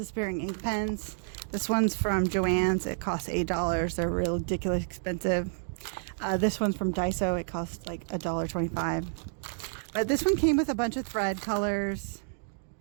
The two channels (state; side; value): silent; left; digital silence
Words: ink pens. This one's from Joann's. It costs $8. They're real ridiculously expensive. This one's from Daiso. It costs like $1.25. But this one came with a bunch of thread colors.